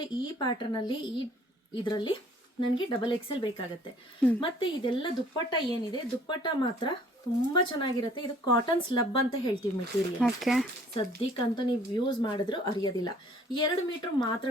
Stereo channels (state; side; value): normal; both; correlation 0.57